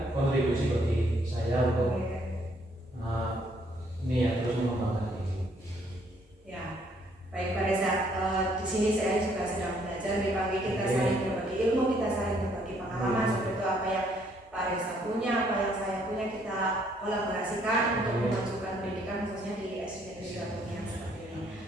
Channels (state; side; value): normal; both; correlation 0.67